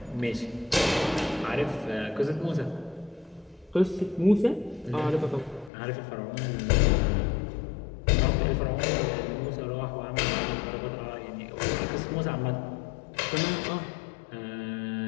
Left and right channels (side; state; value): right; drops out; at 5.7 s